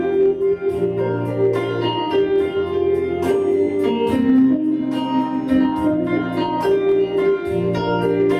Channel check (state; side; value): identical; both; correlation 1.00